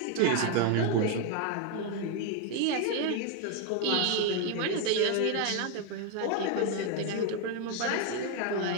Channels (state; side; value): different; both; correlation 0.01